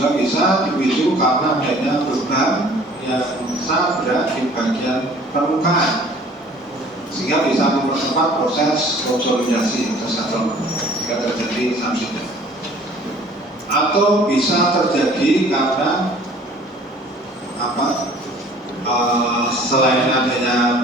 bisa dipicu karena adanya beban yang sangat berat di bagian permukaan, sehingga bisa mempercepat proses konsolidasi tersebut sehingga terjadi subsiden. Atau bisa terjadi karena selain adanya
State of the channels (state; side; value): normal; both; correlation 0.51